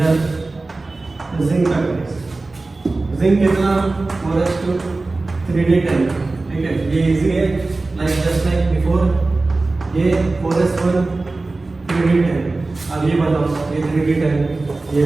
जिंक का केस। जिंक कितना 4:3D10, ठीक है, ये इजी है, लाइक जस्ट लाइक बिफोर, ये 4:1 3D10। अब ये बताओ, ये 3D10, ये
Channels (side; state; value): left; quieter; 3.4 dB